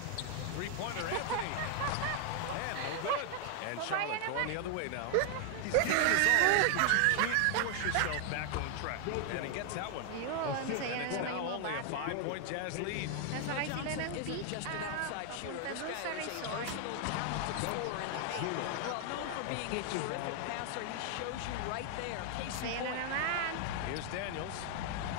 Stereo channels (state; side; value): different; both; correlation 0.00